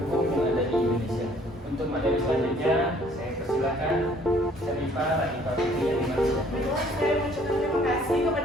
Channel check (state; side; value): normal; both; correlation 0.59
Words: Untuk materi selanjutnya, saya persilakan Syarifah Latifah Fitri yang dimaksud. Kedua, saya mengucapkan terima kasih